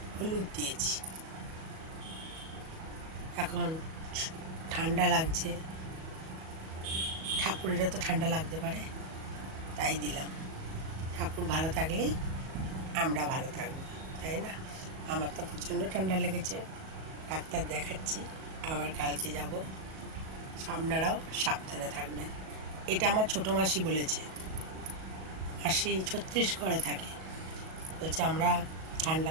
হলুদ দিয়েছি। এখন ঠান্ডা লাগছে, ঠাকুরেরও তো ঠান্ডা লাগতে পারে, তাই দিলাম। ঠাকুর ভালো থাকলেই আমরা ভালো থাকবো, তাই না? আমার তো প্রচণ্ড ঠান্ডা লেগেছে, ডাক্তার দেখাচ্ছি, আবার কালকে যাব। আপনারাও সাবধানে থাকবেন। এটা আমার ছোটো মাসি বলেছে, মাসি ছত্তিশগড়ে থাকে, বলছে আমরা ঠান্ডা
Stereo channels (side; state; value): left; late; 37 ms